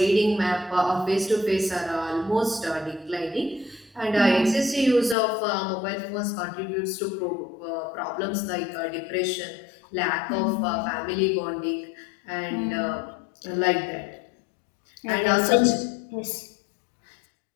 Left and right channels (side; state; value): right; drops out; at 5.2 s